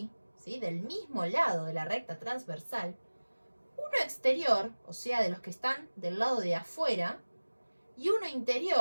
¿sí? Del mismo lado de la recta transversal, uno exterior, o sea, de los que están del lado de afuera, y uno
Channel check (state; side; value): inverted; both; correlation -1.00